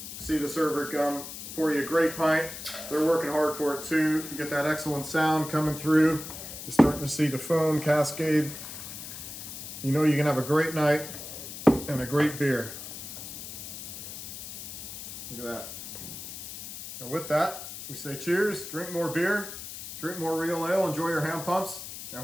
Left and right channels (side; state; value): left; noise; hiss, 10 dB below the sound